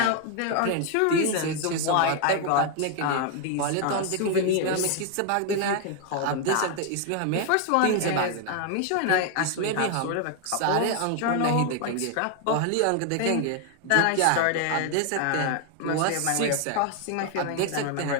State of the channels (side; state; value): both; different; correlation 0.01